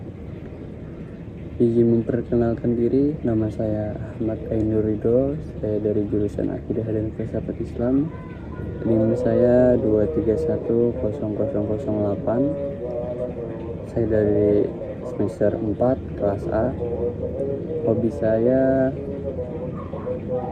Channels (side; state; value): both; identical; correlation 1.00